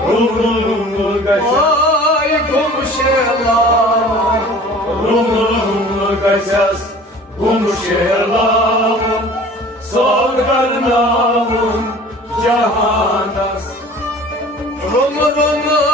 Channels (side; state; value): both; normal; correlation 0.45